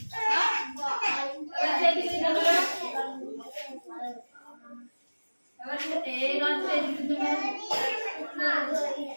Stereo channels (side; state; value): both; inverted; correlation -1.00